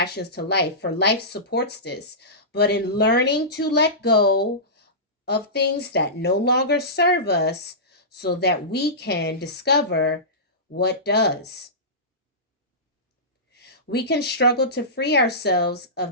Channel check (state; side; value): normal; both; correlation -0.19